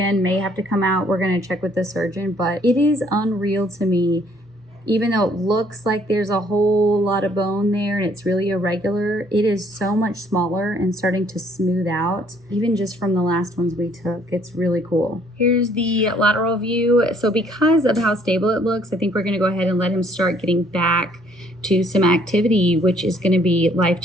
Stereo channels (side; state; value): both; normal; correlation 0.63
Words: may have to come out. We're going to check with the surgeon, but it is unreal to me. Even though it looks like there's a whole lot of bone there and it's really irregular, it is so much smaller and starting to smooth out, even just from the last ones we took. It's really cool. Here's the lateral view. So because of how stable it looks, I think we're gonna go ahead and let him start getting back to some activity, which is going to be